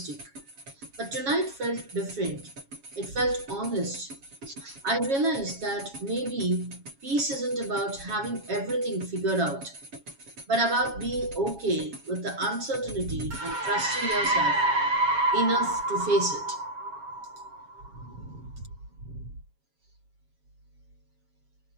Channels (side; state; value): left; late; 7.3 ms